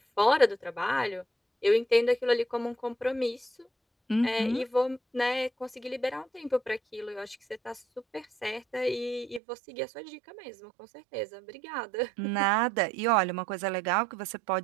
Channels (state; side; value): drops out; left; at 9.4 s